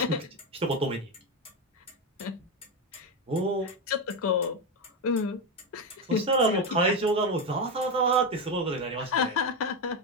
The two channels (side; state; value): both; normal; correlation 0.11